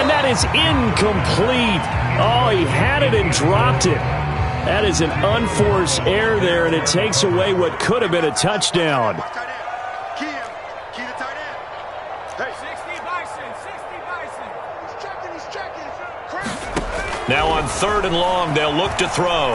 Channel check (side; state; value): both; identical; correlation 1.00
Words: that is incomplete. Oh, he had it and dropped it. That is an unforced error there, and it takes away what could have been a touchdown. Key the tight end. Hey, 60 Bison. He's checking. Now on 3rd and long, they'll look to